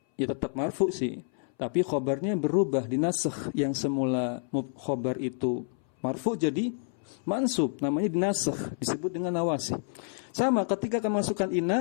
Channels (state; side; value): silent; right; 58 dB below the other